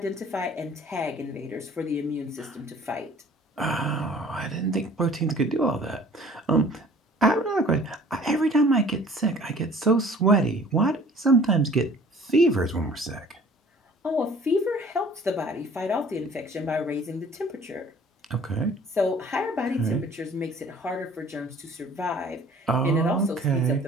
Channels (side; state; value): both; normal; correlation 0.50